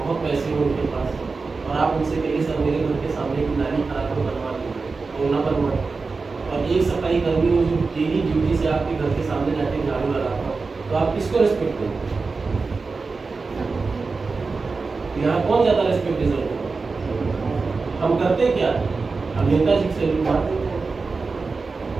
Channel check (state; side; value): quieter; left; 4.3 dB